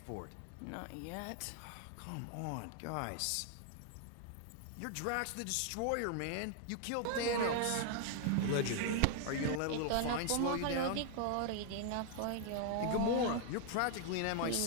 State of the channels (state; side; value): different; both; correlation 0.00